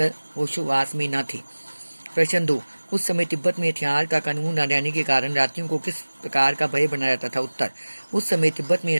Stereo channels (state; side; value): inverted; both; correlation -1.00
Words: होशोवास में न थे। प्रश्न 2। उस समय तिब्बत में हथियार का कानून न रहने के कारण रात्रियों को किस प्रकार का भय बना रहता था? उत्तर। उस समय तिब्बत में